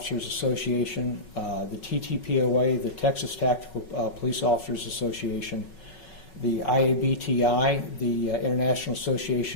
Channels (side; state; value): right; late; 5.4 ms